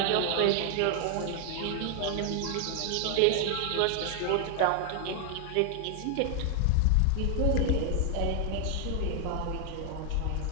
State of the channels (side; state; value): both; different; correlation 0.00